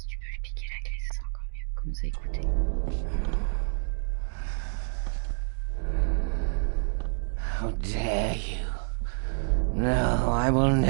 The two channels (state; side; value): silent; left; digital silence